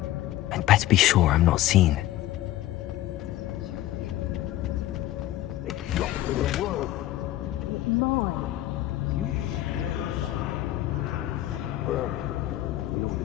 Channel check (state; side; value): quieter; right; 14.7 dB